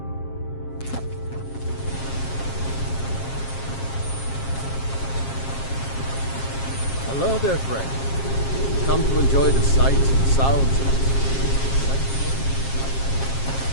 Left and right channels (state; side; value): late; right; 7.5 ms